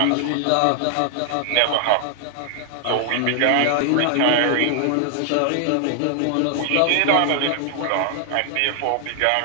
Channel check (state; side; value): different; both; correlation 0.00